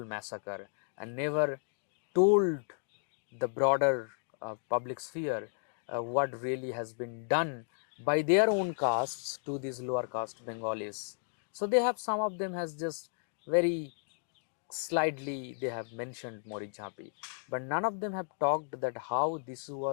massacre and never told the broader public sphere what really has been done by their own castes to these lower caste Bengalis. So they have, some of them has just very slightly they have mentioned Marichjhapi, but none of them have talked that how this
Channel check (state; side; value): silent; right; digital silence